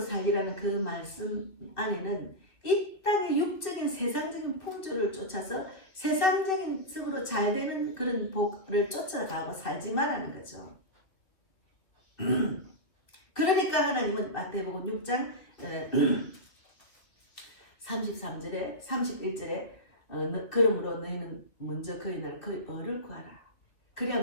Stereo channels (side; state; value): right; late; 2.4 ms